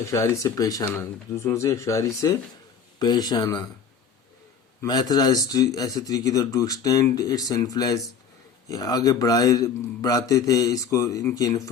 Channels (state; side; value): quieter; right; 6.4 dB